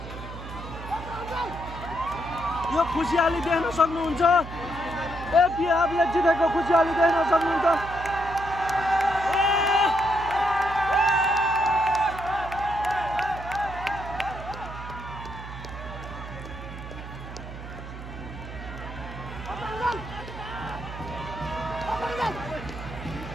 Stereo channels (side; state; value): right; noise; hum, 11 dB below the sound